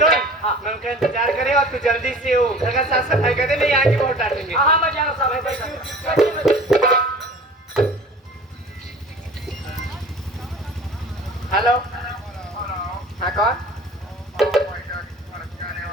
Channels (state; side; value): normal; both; correlation 0.43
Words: है। हाँ मैं उनका इंतजार करे और तू जल्दी से वो घर का साफ सफाई कर दे, नहीं यहाँ की बहुत डांटेंगे। हाँ मैं जाना साहब। हेलो, हाँ कौन?